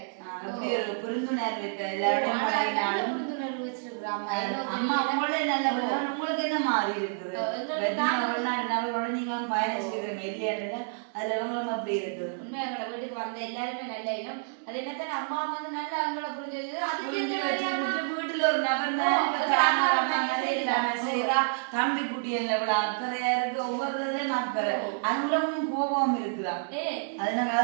எப்படி ஒரு புரிந்துணர்வு இப்ப எல்லாரோடையும் பழகினாலும் அம்மா உங்களே நல்ல உங்களுக்கு என்ன மாறி இருக்குது? வெளிநாடு நபரோட நீங்க பயணிச்சிருக்கீங்க இல்லையா? அதுல இவங்களும் அப்படி இருக்குது. உண்மையா எங்களை வீட்டுக்கு வந்த எல்லாருமே நல்ல இடம். அது என்னத்தான் அம்மா வந்து நல்லா அவங்கள புரிஞ்சு வீட்டுல ஒரு நபர் செய்யறா. தம்பி குட்டி எவ்வளவு அக்கறையா இருக்கு, ஒவ்வொருத்தையும் அக்கறை. அங்குலமும் கோபம் இருக்குதான். அதனால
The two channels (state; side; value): silent; left; digital silence